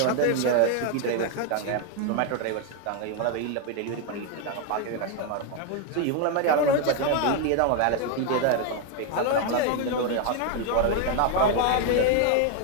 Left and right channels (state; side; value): different; both; correlation 0.01